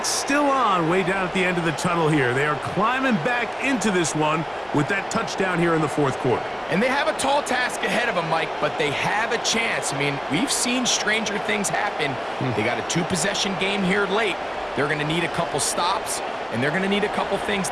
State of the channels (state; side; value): identical; both; correlation 1.00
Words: still on way down at the end of the tunnel here. They are climbing back into this one with that touchdown here in the fourth quarter. And they have a tall task ahead of them, Mike, but they have a chance. I mean, we've seen stranger things happen. They got a 2-possession game here late. They're going to need a couple stops, and they're going to need a couple things